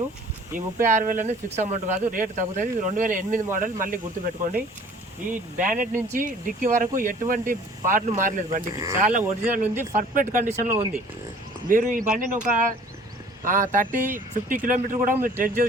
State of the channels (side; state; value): both; normal; correlation 0.51